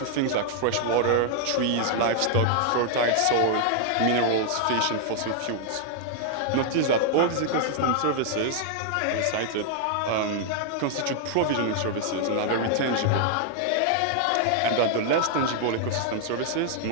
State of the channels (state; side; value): different; both; correlation 0.00